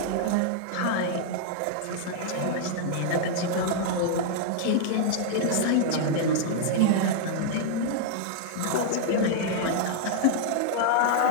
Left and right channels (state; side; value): different; both; correlation -0.01